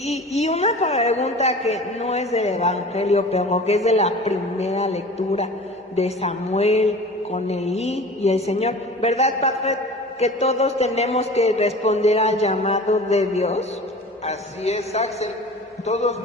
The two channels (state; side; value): normal; both; correlation 0.39